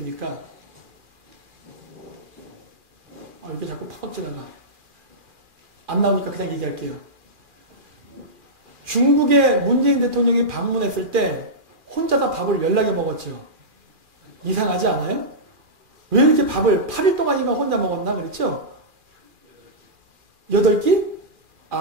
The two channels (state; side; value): late; left; 2.4 ms